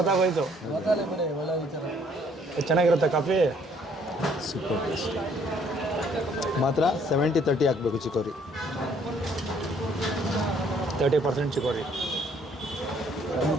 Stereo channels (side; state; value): both; normal; correlation 0.63